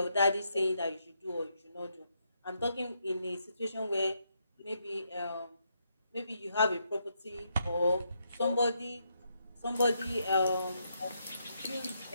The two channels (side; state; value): both; inverted; correlation -0.79